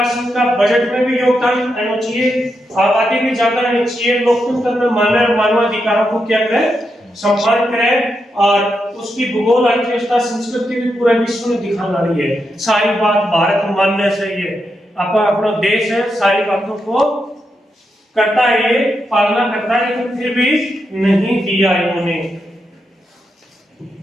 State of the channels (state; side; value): normal; both; correlation 0.84